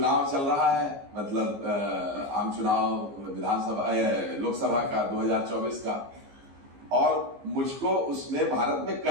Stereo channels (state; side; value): late; left; 15 ms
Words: चल रहा है, मतलब आम चुनाव विधानसभा लोकसभा का 2024 का, और मुझको उसमें भारत में